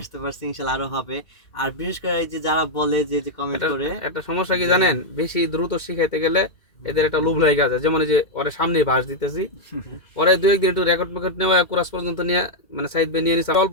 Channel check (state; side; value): late; right; 2.2 ms